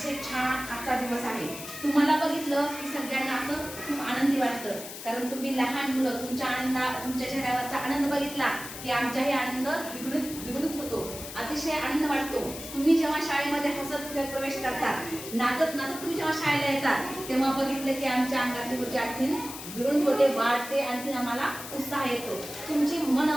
छान आजचा दिवस आहे. तुम्हाला बघितलं की सगळ्यांना असं खूप आनंदी वाटतं, कारण तुम्ही लहान मुलं तुमच्या चेहऱ्यावरचा आनंद बघितला की आमचाही आनंद द्विगुणित होतो. अतिशय आनंद वाटतो. तुम्ही जेव्हा शाळेमध्ये हसत खेळत प्रवेश करतात, नाचत नाचत तुम्ही जेव्हा शाळेला येतात, तेव्हा बघितलं की आमच्या अंगातली ऊर्जा आणखीन द्विगुणित होते, वाढते, आणखीन आम्हाला उत्साह येतो. तुमची मन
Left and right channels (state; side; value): noise; left; hiss, 11 dB below the sound